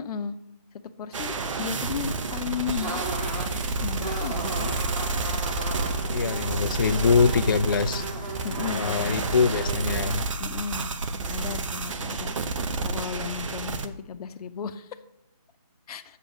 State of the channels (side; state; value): both; inverted; correlation -0.54